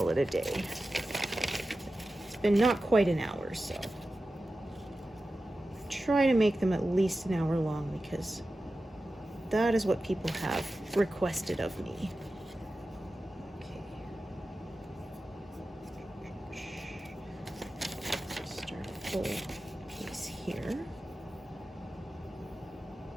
it a day. It's been not quite an hour, so try to make them at least an hour long because that is what people have requested of me. Start a full piece here.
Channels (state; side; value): normal; both; correlation 0.94